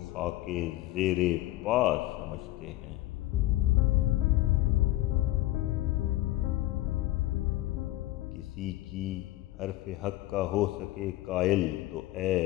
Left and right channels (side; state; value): right; quieter; 16.4 dB